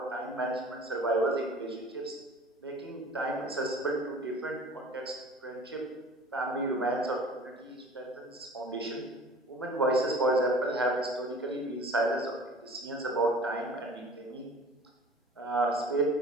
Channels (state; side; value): normal; both; correlation 0.45